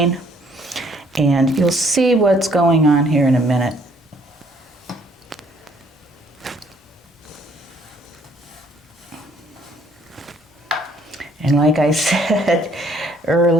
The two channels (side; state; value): both; normal; correlation 0.64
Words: and you'll see what's going on here in a minute. And like I said